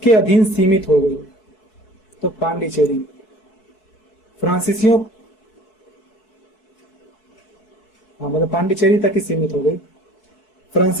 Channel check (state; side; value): late; right; 4.6 ms